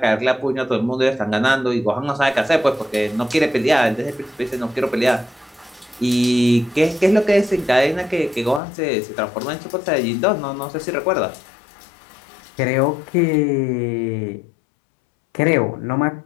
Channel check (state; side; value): drops out; right; at 8.6 s